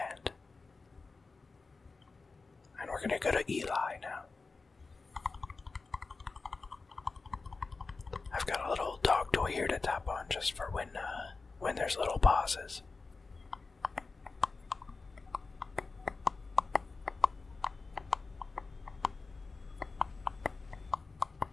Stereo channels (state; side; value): quieter; right; 4.1 dB